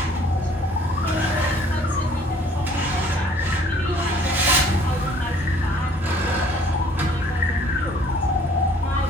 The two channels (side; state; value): both; normal; correlation 0.56